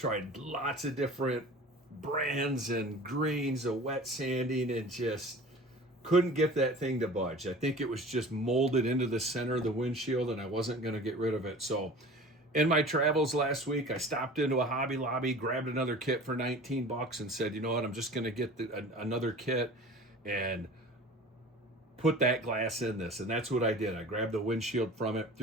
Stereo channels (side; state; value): both; normal; correlation 0.41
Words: lots of different brands and grains of wet sanding and just couldn't get that thing to budge. I think it was just molded into the center of the windshield and I wasn't going to get rid of it. So in my travels last week, I stopped into a Hobby Lobby, grabbed another kit for 19 bucks and said, you know what, I'm just going to get another kit and put that glass in this. And that's what I did. I grabbed the windshield from it,